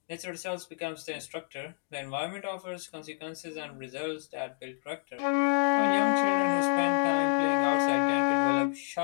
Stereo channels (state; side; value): silent; right; digital silence